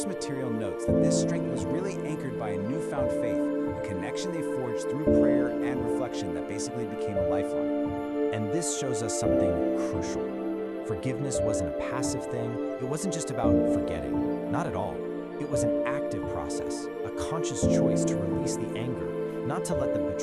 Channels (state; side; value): identical; both; correlation 1.00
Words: material notes that this strength was really anchored by a newfound faith, a connection they forged through prayer and reflection that basically became a lifeline. And this shows us something crucial. Forgiveness wasn't a passive thing. It wasn't just about forgetting. Not at all. It was an active process, a conscious choice to release the anger, not to let the